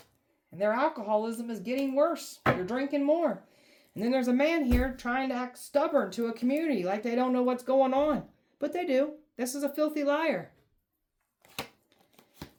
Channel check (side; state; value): both; identical; correlation 1.00